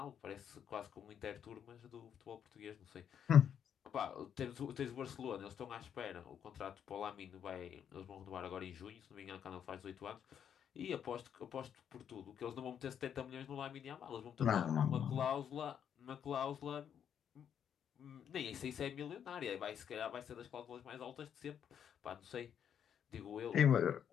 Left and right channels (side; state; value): right; quieter; 8.6 dB